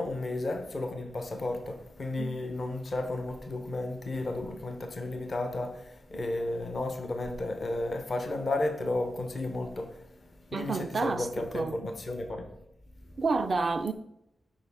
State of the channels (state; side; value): normal; both; correlation 0.89